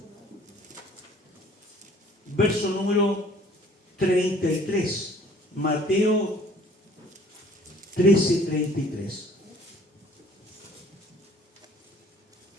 verso número 33. Mateo 13, 33.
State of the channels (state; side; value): normal; both; correlation 0.55